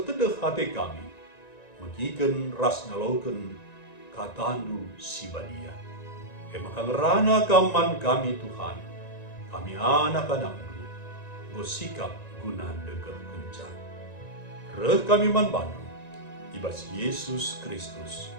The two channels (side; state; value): right; late; 1.9 ms